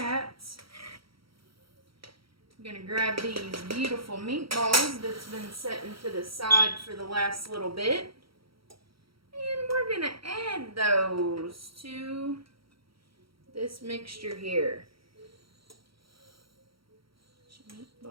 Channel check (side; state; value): left; late; 0.75 ms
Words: I'm going to grab these beautiful meatballs that's been setting to the side for the last little bit. And we're going to add those to this mixture here. Put your